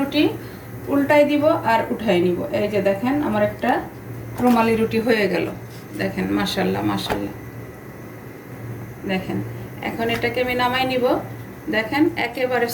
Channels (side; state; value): both; identical; correlation 1.00